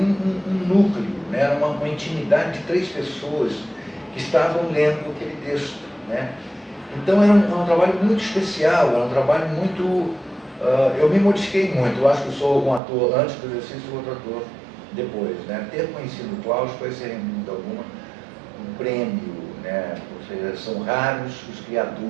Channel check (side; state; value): left; drops out; at 12.8 s